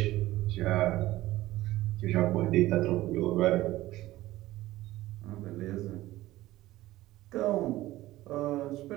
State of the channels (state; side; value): quieter; left; 16.6 dB